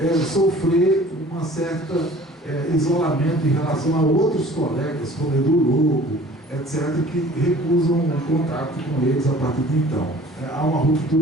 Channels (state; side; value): normal; both; correlation 0.48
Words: sofrer uma certa isolamento em relação a outros colegas, como Edu Lobo, etc., que recusam o contato com eles a partir de então. Há uma